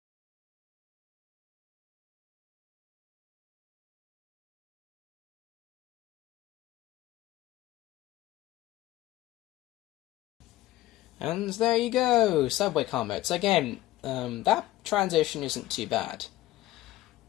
And there you go, subway car mode. So again, that transition isn't too bad.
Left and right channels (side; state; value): right; quieter; 16.1 dB